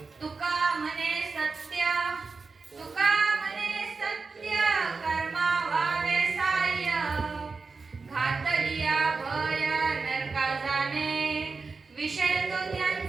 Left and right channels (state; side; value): quieter; left; 4.4 dB